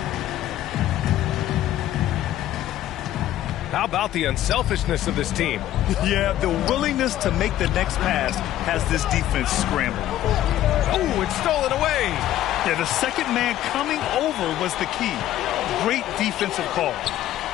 How about the unselfishness of this team? Yeah, the willingness to make the next pass has this defense scrambled. Oh, it's stolen away. Yeah, the second man coming over was the key. Great defensive call.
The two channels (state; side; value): quieter; right; 13.1 dB